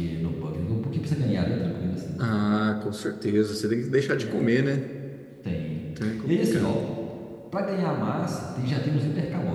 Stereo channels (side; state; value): both; identical; correlation 1.00